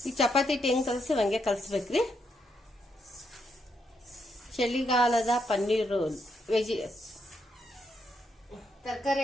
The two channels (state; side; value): normal; both; correlation 0.79